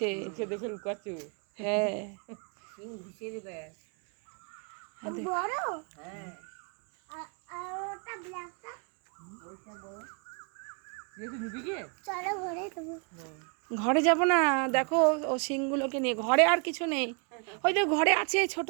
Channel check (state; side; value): quieter; left; 38.2 dB